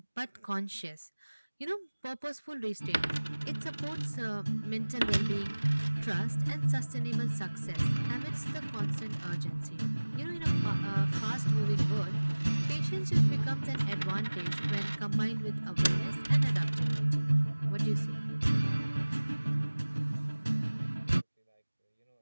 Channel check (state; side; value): inverted; both; correlation -1.00